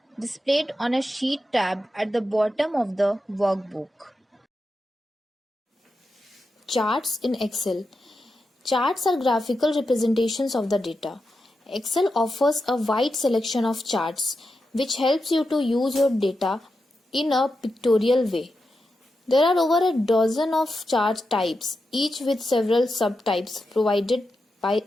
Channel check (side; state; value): both; normal; correlation 0.88